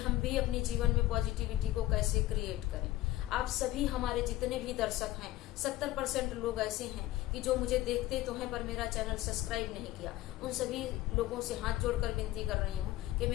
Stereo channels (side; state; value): right; quieter; 15.9 dB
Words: भी अपने जीवन में पॉजिटिविटी को कैसे क्रिएट करें। आप सभी हमारे जितने भी दर्शक हैं, 70% लोग ऐसे हैं कि जो मुझे देखते तो हैं पर मेरा चैनल सब्सक्राइब नहीं किया। उन सभी लोगों से हाथ जोड़कर विनती कर रही हूँ कि